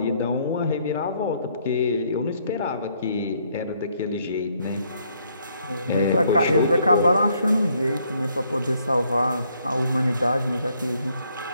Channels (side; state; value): both; inverted; correlation -0.69